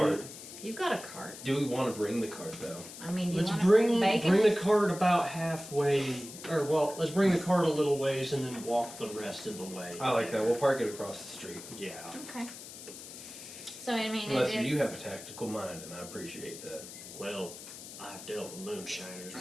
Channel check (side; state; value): left; noise; hiss, 13 dB below the sound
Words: You've got a cart. Do we want to bring the cart, though? I mean, do you Let's want to bring bacon? the cart about halfway, or well, let's bring the cart a little ways and then walk the rest of the way. I like that. We'll park it across the street. Yeah. Okay. So I mean, Unless it is. you have a tactical mind, and I appreciate that. Well, I've dealt with moonshiners